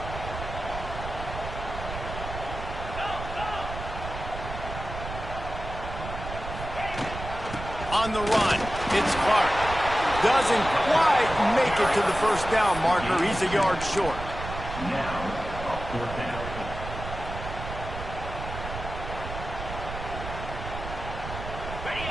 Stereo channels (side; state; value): right; noise; rumble, 8 dB below the sound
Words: On the run, it's Clark. Doesn't quite make it to the 1st down marker. He's a yard short. Now, 4th down.